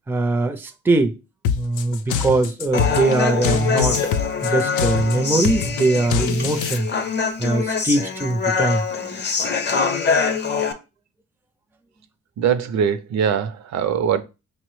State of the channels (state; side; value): normal; both; correlation 0.42